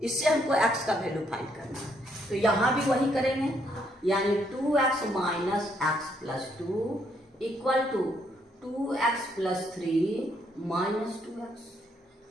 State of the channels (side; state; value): both; normal; correlation 0.72